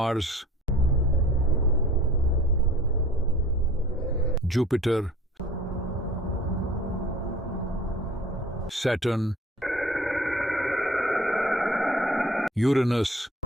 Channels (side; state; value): both; normal; correlation 0.48